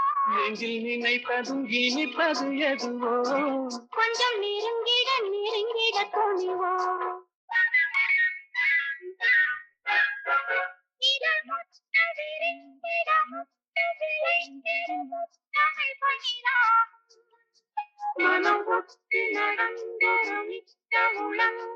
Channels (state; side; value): identical; both; correlation 1.00